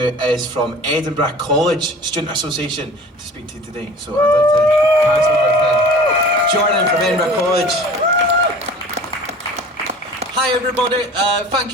from Edinburgh College Student Association, to speak to you today. So I'd like to pass over to Jordan from Edinburgh College. Hi everybody, thank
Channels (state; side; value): normal; both; correlation 0.43